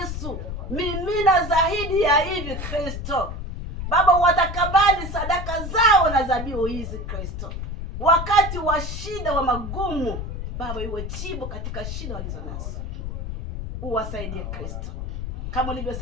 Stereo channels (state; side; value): noise; left; rumble, 6 dB below the sound